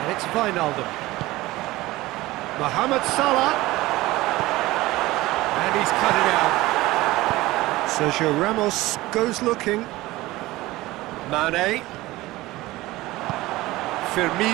it's Wijnaldum. Mohamed Salah. And he's cut it out. Sergio Ramos goes looking. Mane.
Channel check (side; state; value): left; quieter; 18.6 dB